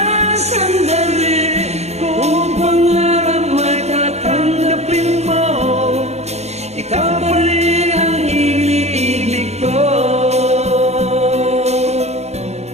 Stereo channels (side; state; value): left; late; 0.32 ms